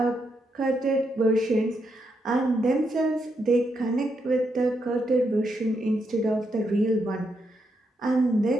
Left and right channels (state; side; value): normal; both; correlation 0.80